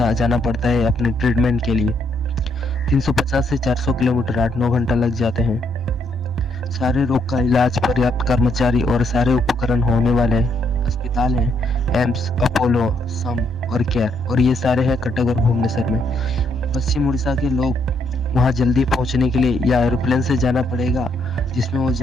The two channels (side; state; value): both; normal; correlation 0.73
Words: जाना पड़ता है अपने ट्रीटमेंट के लिए। 350 से 400 किलोमीटर 8-9 घंटा लग जाते हैं। सारे रोग का इलाज, पर्याप्त कर्मचारी और सारे उपकरण होने वाले अस्पताल हैं, एम्स, अपोलो, सम और केयर, और ये सारे हैं कटक और भुवनेश्वर में। पश्चिम उड़ीसा के लोग वहाँ जल्दी पहुँचने के लिए या एरोप्लेन से जाना पड़ेगा जिसमें वो